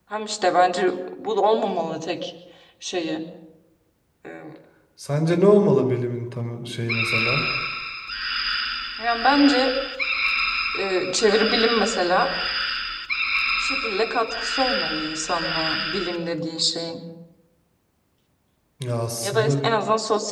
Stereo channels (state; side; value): identical; both; correlation 1.00